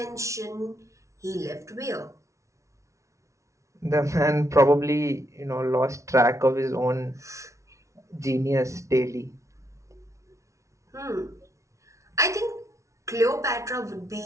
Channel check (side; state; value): left; late; 0.14 ms